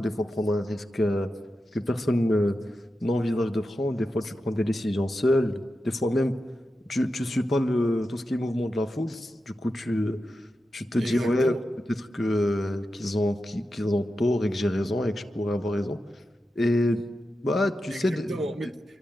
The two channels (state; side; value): normal; both; correlation 0.90